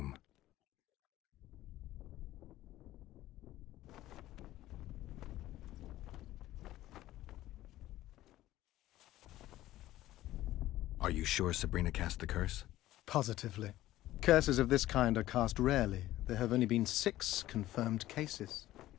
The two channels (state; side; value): quieter; right; 15.1 dB